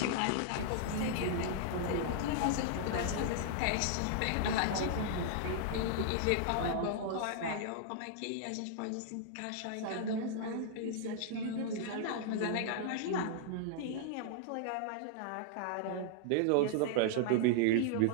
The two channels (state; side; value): different; both; correlation -0.01